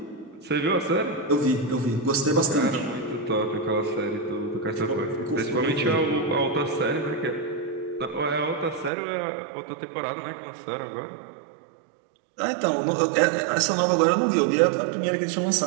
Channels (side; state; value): left; drops out; at 8.9 s